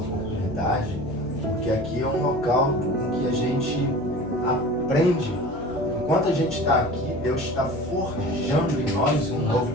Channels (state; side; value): noise; left; hum, 19 dB below the sound